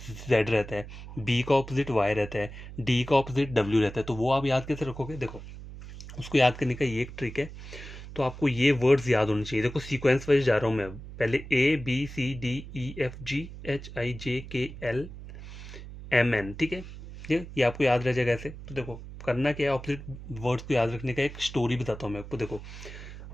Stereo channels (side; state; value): right; noise; hum, 13 dB below the sound